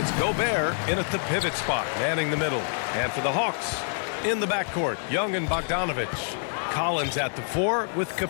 Gobert in at the pivot spot, manning the middle. And for the Hawks, in the backcourt, Young and Bogdanovic. Collins at the 4 with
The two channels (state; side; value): silent; right; digital silence